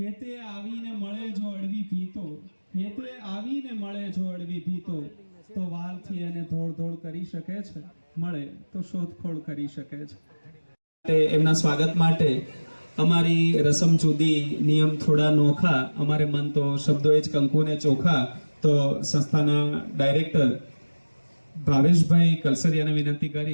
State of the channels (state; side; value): inverted; both; correlation -1.00